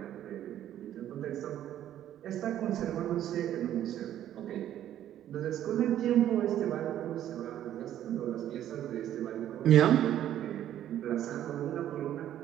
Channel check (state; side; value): quieter; left; 11.5 dB